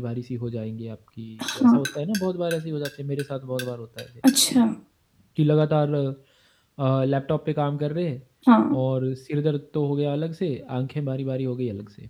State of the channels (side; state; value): both; identical; correlation 1.00